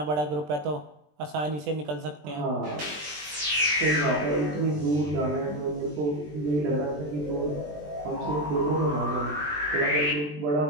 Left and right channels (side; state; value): left; late; 20 ms